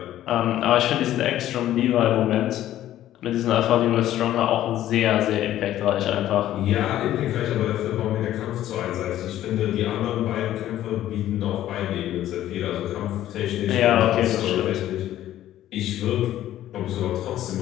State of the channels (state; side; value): quieter; right; 12.9 dB